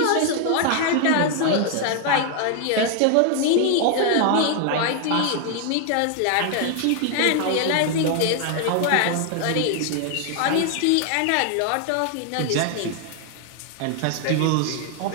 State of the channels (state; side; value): different; both; correlation 0.00